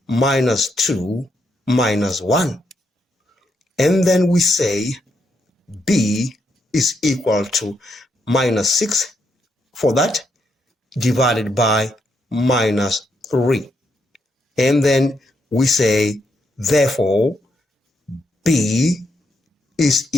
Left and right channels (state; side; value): normal; both; correlation 0.79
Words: minus 2 minus 1. And then we say b is equal to minus 6 for that, divided by minus 3. And then we say, therefore, b is